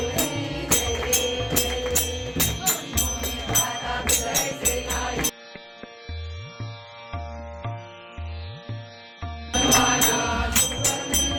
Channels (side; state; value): both; identical; correlation 1.00